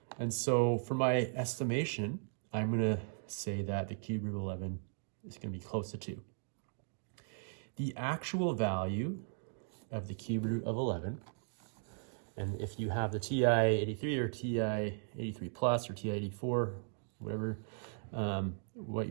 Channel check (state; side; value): silent; left; digital silence